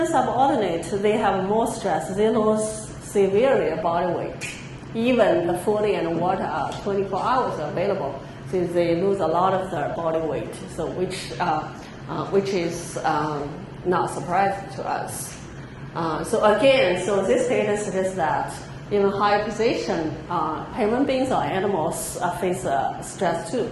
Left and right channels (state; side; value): identical; both; correlation 1.00